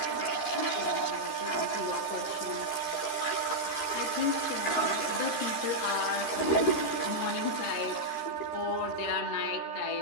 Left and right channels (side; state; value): right; late; 13 ms